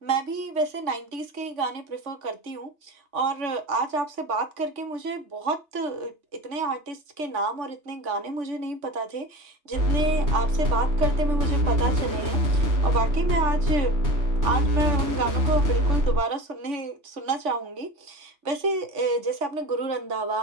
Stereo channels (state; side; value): late; left; 3.5 ms